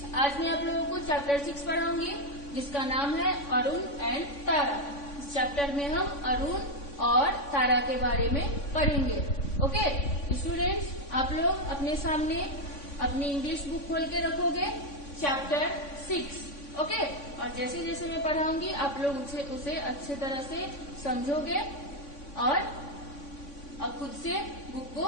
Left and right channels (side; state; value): right; late; 3.5 ms